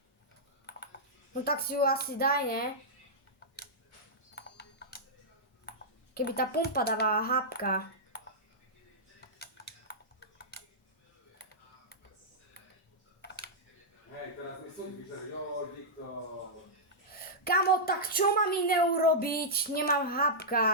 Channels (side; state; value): both; normal; correlation -0.10